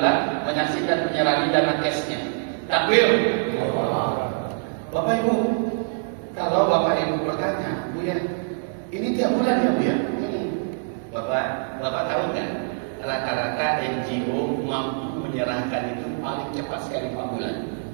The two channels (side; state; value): left; silent; digital silence